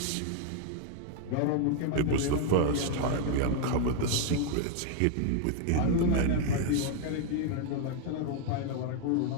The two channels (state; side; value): different; both; correlation 0.00